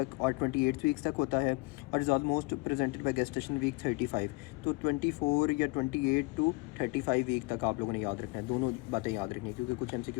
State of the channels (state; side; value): quieter; right; 25.9 dB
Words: और 28 वीक्स तक होता है, और is almost presented by gestation week 35। तो 24 या 28 टू 35 वीक तक आप लोगों ने याद रखना है, दोनों बातें याद रखनी है, क्योंकि कुछ